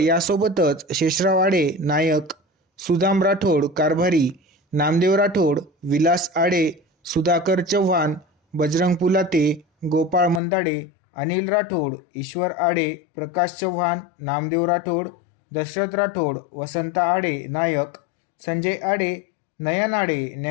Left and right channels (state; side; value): drops out; right; at 10.4 s